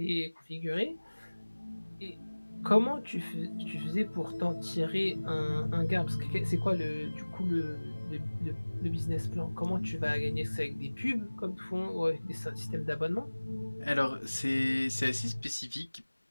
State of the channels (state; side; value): inverted; both; correlation -1.00